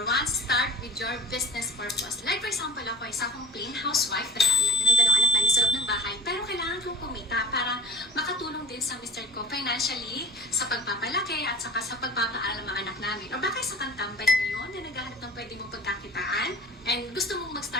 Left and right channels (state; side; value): normal; both; correlation 0.35